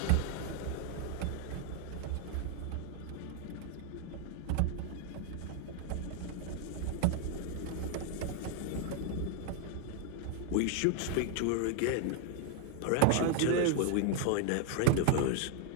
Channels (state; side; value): different; both; correlation 0.00